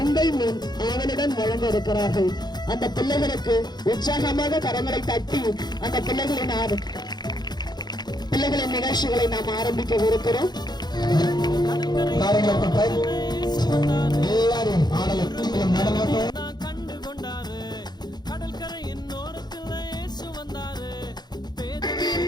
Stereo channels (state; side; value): late; right; 0.20 ms